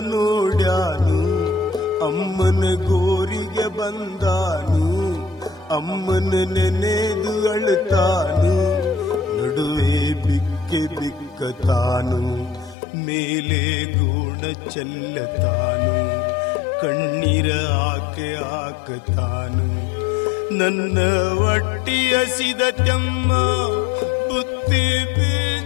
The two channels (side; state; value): right; drops out; at 12.8 s